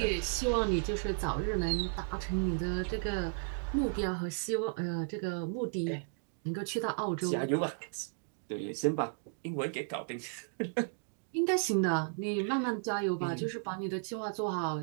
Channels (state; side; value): silent; left; 55 dB below the other